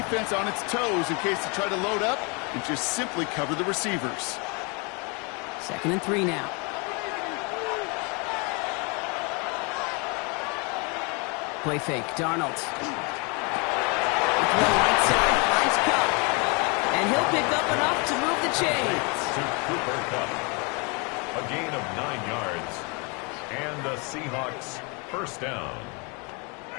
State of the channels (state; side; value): quieter; right; 31.9 dB